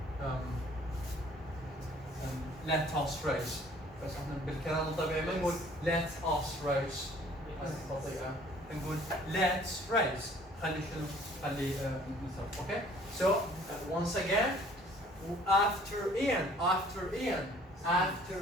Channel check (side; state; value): both; normal; correlation 0.55